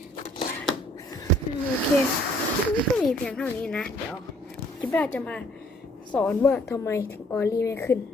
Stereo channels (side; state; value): both; normal; correlation 0.61